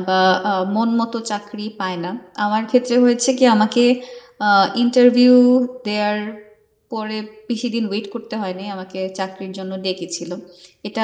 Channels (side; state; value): both; identical; correlation 1.00